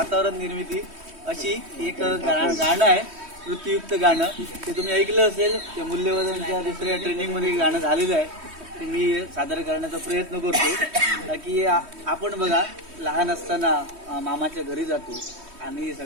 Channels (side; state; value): left; late; 3.1 ms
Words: निर्मिती अशी एक गाणं आहे, वृत्तीयुक्त गाणं. ते तुम्ही ऐकलं असेल, ते मूल्यवर्धनच्या दुसऱ्या ट्रेनिंगमध्ये गाणं झालेलं आहे. ते मी सादर करण्याचा प्रयत्न करतो की आपण बघा, लहान असताना मामाच्या घरी जातो आणि